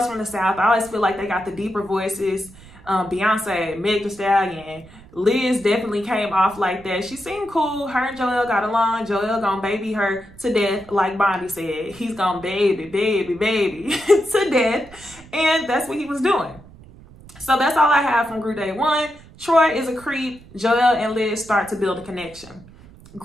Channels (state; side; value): noise; right; rumble, 22 dB below the sound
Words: from the South. I always feel like they got the deeper voices. Beyonce, Meg Thee Stallion. Liz definitely came off like that. She seemed cool. Her and Joelle got along. Joelle gonna baby her to death, like Bondi said. He's gonna baby to death. And that's what he was doing. So that's all I have from group date one. Troy is a creep. Joelle and Liz start to build a connection.